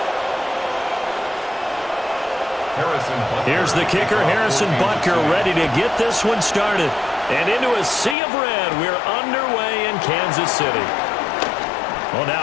Here's the kicker, Harrison Butker, ready to get this one started. And into a sea of red, we're underway in Kansas City. Well,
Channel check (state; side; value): drops out; right; at 8.2 s